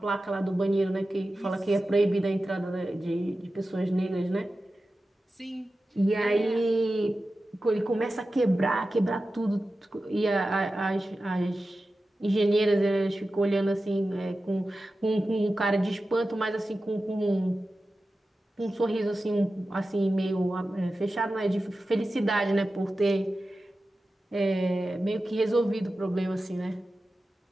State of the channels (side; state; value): both; normal; correlation 0.94